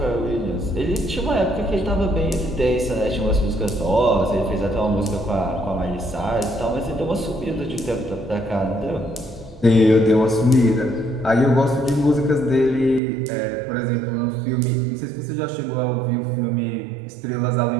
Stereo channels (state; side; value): drops out; left; at 13.0 s